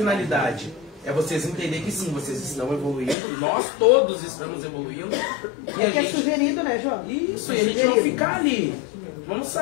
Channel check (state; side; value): drops out; right; at 3.2 s